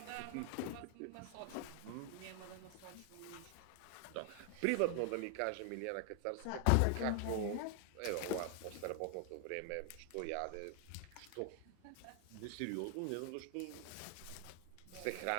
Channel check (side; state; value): both; different; correlation 0.00